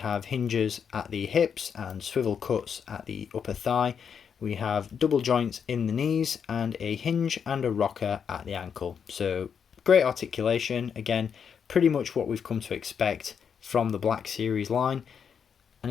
hinges at the hips and swivel cuts at the upper thigh. We have double joints in the knees and a hinge and a rocker at the ankle. So great articulation, again, pretty much what we've come to expect from the Black Series line. And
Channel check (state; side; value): quieter; right; 7.1 dB